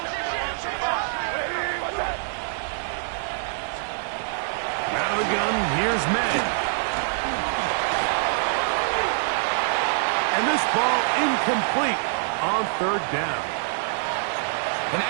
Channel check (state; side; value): silent; left; digital silence